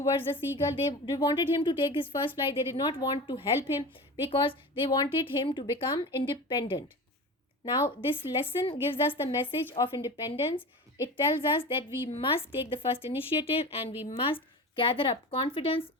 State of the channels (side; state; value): both; normal; correlation 0.31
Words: the seagull. They wanted him to take his first flight. They did not want to help him because they wanted him to become independent. Now, this lesson gives us the message of independence. It tells us that we must take the first initiative and we must gather up confidence